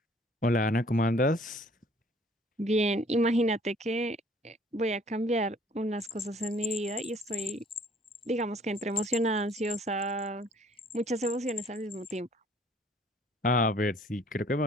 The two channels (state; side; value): normal; both; correlation 0.58